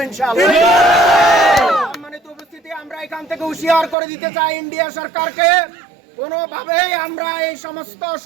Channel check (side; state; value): left; drops out; at 4.0 s